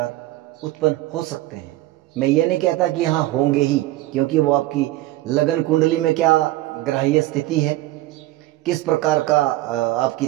उत्पन्न हो सकते हैं। मैं ये नहीं कहता कि हाँ होंगे ही, क्योंकि वो आपकी लगन कुंडली में क्या ग्रहीय स्थिति है, किस प्रकार का आपकी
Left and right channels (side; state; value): left; quieter; 16.7 dB